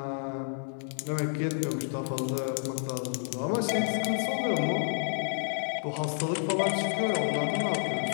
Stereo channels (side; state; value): right; silent; digital silence